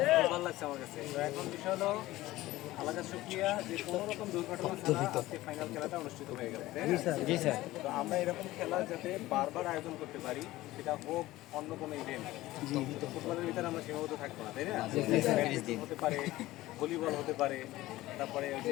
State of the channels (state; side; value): quieter; right; 17.2 dB